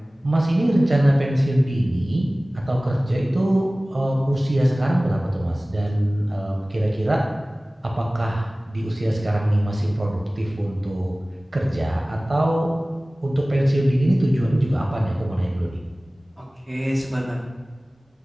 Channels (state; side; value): normal; both; correlation 0.98